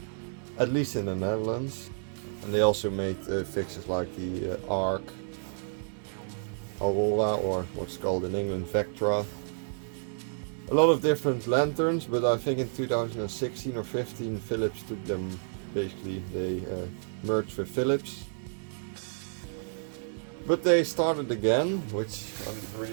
at least in the Netherlands. And they also made fixtures like the Arc, Aurora, or what's called in England Vectra. A lot of different lanterns, but I think in 2016 or 15 Philips took them, basically they merged with Philips. But they started again, which I don't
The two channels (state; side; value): silent; left; 58 dB below the other